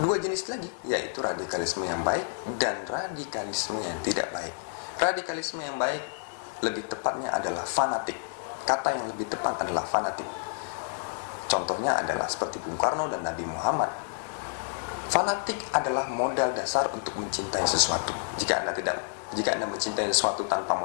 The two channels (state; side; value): silent; right; digital silence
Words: jenis lagi, yaitu radikalisme yang baik dan radikalisme yang tidak baik. Radikalisme yang baik lebih tepatnya adalah fanatik. Kata yang lebih tepat adalah fanatik. Contohnya adalah seperti Bung Karno dan Nabi Muhammad. Fanatik adalah modal dasar untuk mencintai sesuatu. Jika Anda mencintai sesuatu tanpa